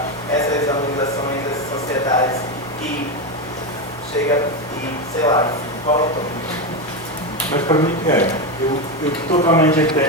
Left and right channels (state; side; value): normal; both; correlation 0.12